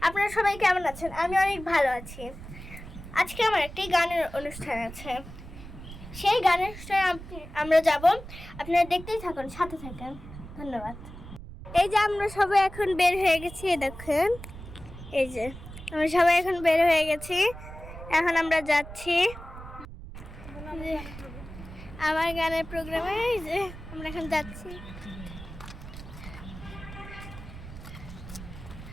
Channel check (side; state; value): right; noise; rumble, 13 dB below the sound